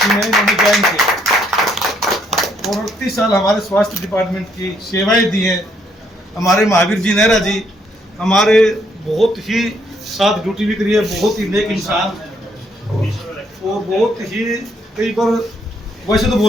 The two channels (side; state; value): both; normal; correlation 0.70